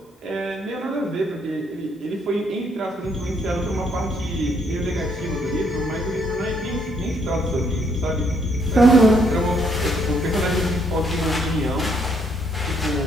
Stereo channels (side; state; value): both; normal; correlation 0.70